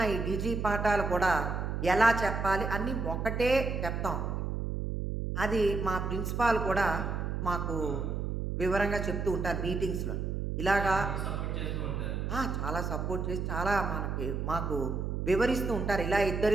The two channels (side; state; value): right; noise; hum, 2 dB below the sound